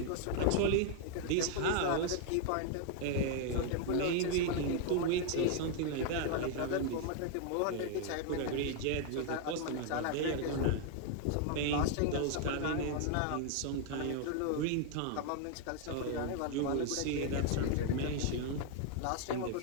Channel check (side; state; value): both; different; correlation 0.00